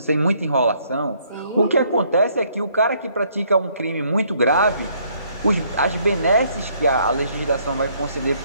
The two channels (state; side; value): inverted; both; correlation -0.67